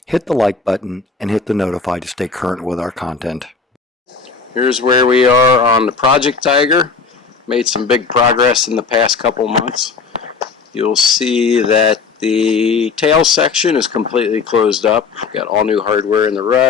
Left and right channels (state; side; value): quieter; right; 4.9 dB